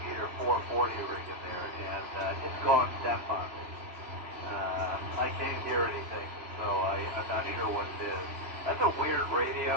440 rig in there, and it's gone deaf on me. I can't hear anything, so I'm not sure what it is. That's a weird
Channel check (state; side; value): late; left; 3.0 ms